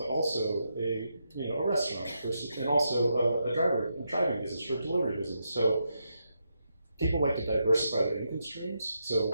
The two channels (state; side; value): inverted; both; correlation -0.83